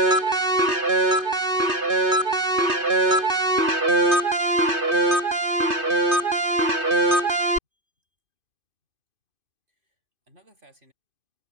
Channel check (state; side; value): late; left; 2.5 ms